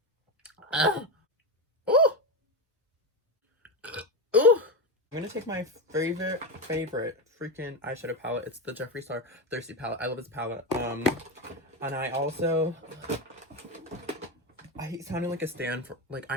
Ooh! Ooh! I'm gonna take my favorite freaking eyeshadow palette. It's the Jeffree Star Thirsty palette. I love this palette. And I also, I hate sounding like a stan for, like,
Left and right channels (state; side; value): normal; both; correlation 0.15